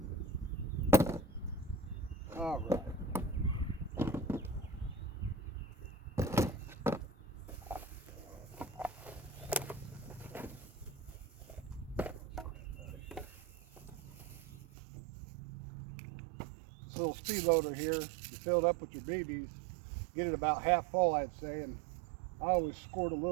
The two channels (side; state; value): left; drops out; at 14.6 s